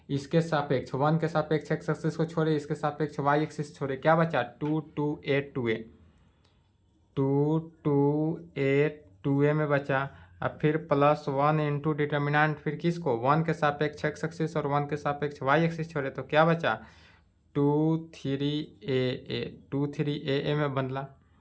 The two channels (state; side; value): identical; both; correlation 1.00